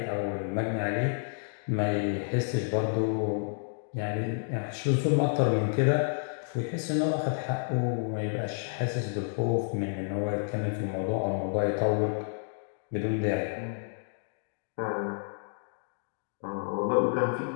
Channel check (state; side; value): silent; right; digital silence